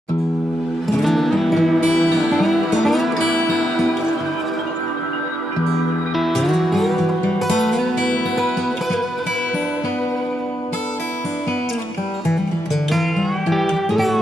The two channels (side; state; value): both; normal; correlation 0.83